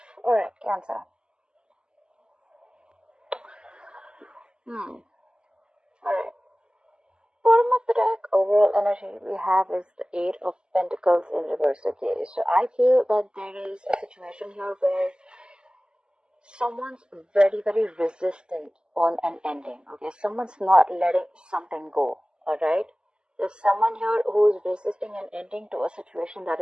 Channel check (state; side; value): late; left; 0.048 ms